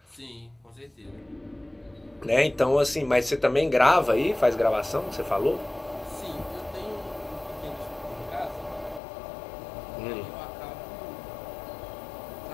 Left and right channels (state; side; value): drops out; right; at 9.0 s